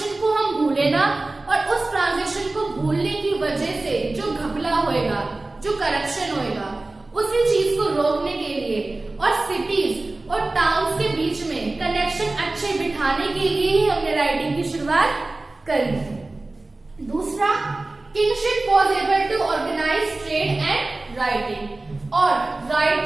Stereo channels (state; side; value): quieter; left; 3.0 dB